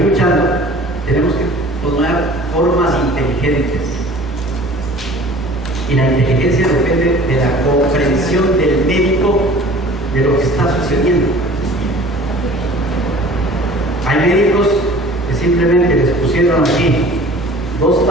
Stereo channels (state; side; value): normal; both; correlation 0.46